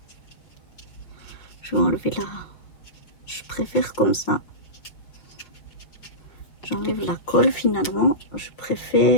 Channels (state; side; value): late; right; 5.7 ms